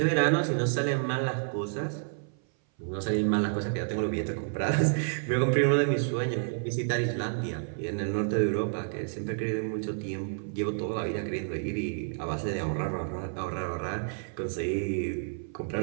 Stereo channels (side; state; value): left; silent; 57 dB below the other